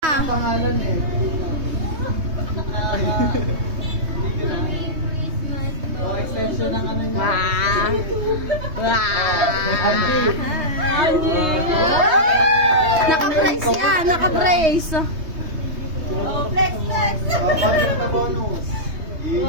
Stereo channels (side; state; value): left; late; 3.2 ms